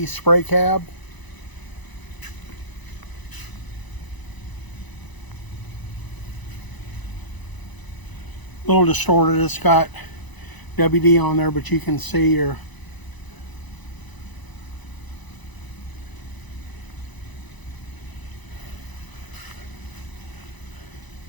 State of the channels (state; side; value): late; right; 1.0 ms